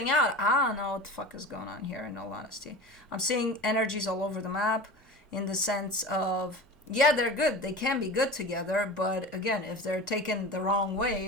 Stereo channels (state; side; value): normal; both; correlation 0.33